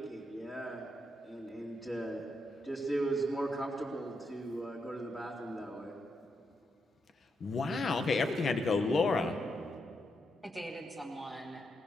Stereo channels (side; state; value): both; normal; correlation 0.82